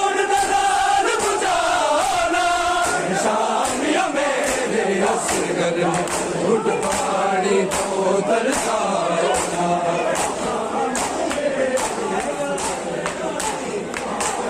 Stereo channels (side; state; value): both; identical; correlation 1.00